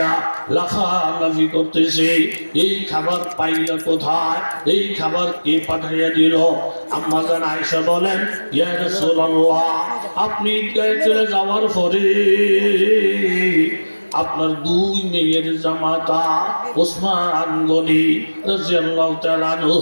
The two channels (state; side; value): inverted; both; correlation -1.00